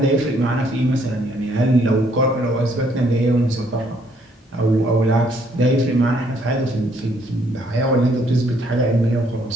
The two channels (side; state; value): both; normal; correlation 0.67